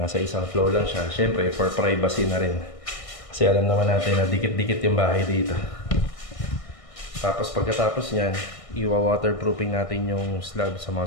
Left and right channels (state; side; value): late; right; 1.6 ms